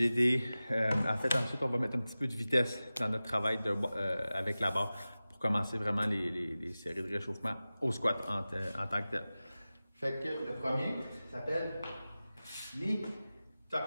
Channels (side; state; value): both; inverted; correlation -0.96